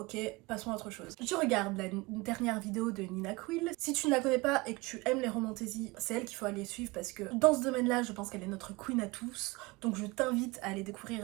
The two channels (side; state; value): left; quieter; 23.7 dB